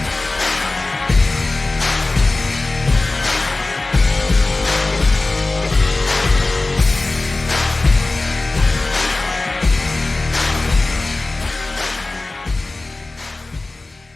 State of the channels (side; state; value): right; quieter; 3.1 dB